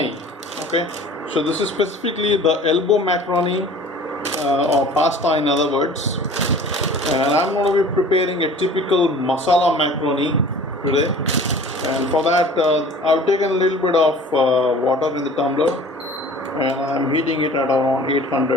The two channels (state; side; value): normal; both; correlation 0.45